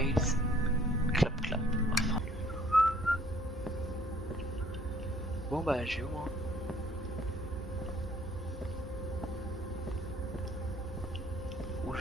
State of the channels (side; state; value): both; normal; correlation 0.59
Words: Clap Clap. Enfin. Bon bah j'ai où moi. Où